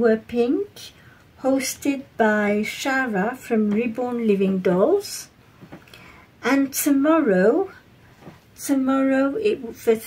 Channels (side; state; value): both; identical; correlation 1.00